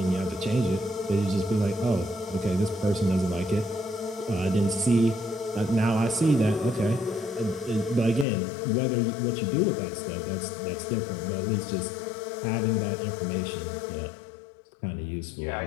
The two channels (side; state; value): right; drops out; at 8.2 s